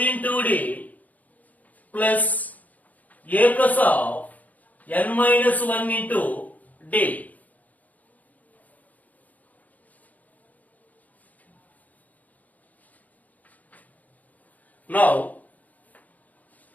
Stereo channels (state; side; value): late; right; 0.078 ms